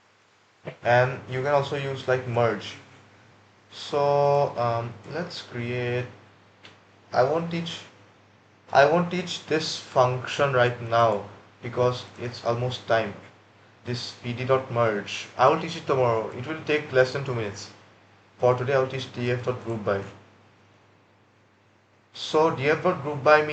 And you can also use like merge. So let's create. I won't teach. I won't teach this function right now because it's almost time. This pd.merge. I will teach it tomorrow. It will take less than 2 minutes. For today, I will teach df.groupby. So df dot group by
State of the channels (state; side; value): identical; both; correlation 1.00